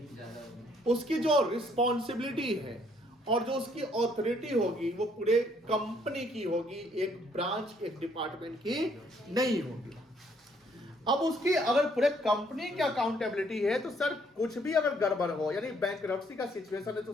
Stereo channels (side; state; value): both; normal; correlation 0.66